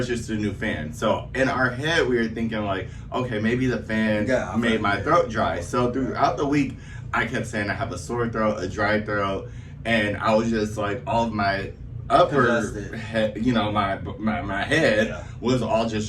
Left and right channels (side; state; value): both; identical; correlation 1.00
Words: a new fan. So, in our head, we were thinking like, okay, maybe the fan made my throat dry. So, throughout the week, I kept saying I have a sore throat, a dry throat, and I was just like, all of my upper head, you know, my head was all